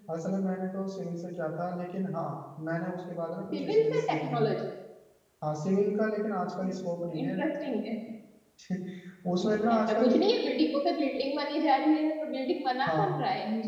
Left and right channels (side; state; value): both; identical; correlation 1.00